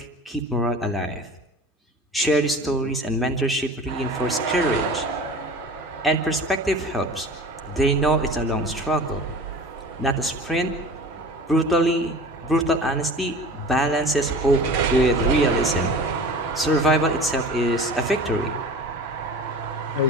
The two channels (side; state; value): both; normal; correlation 0.38